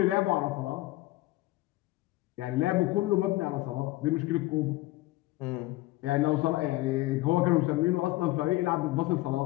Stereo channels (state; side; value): quieter; right; 18.7 dB